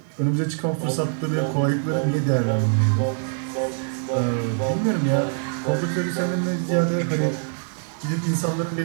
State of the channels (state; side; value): silent; left; 63 dB below the other